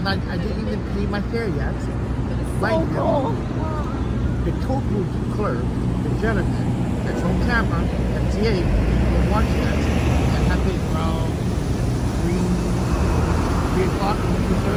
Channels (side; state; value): both; identical; correlation 1.00